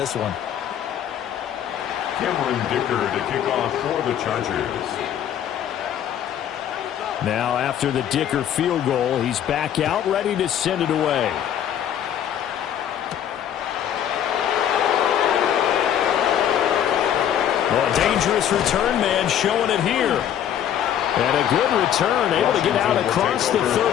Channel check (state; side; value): quieter; right; 10.1 dB